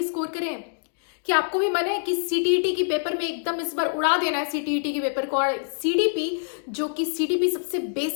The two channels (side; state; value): right; silent; digital silence